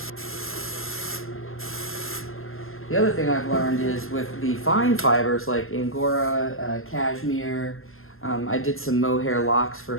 The other thing I've learned is with the fine fibers like Angora, cashmere, I did some mohair locks for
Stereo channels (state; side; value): late; right; 0.61 ms